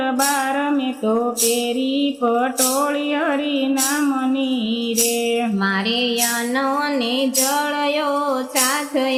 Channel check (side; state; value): both; identical; correlation 1.00